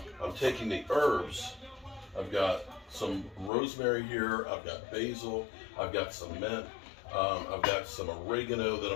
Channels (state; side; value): drops out; right; at 3.5 s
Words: I'm taking the herbs. I've got some rosemary here, I've got basil, I've got some mint, I've got some oregano that